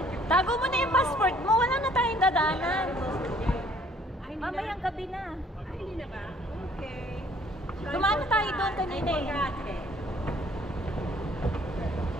Tago mo na yung passport mo. Wala na tayong dadaanan. Mamayang gabi na. Ay, hindi na ba? Okay. Dumaan na tayo doon kanina eh.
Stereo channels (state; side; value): normal; both; correlation 0.60